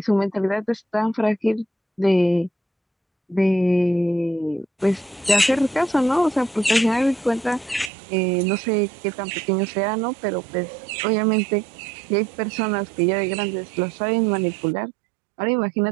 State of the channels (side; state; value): left; drops out; at 7.9 s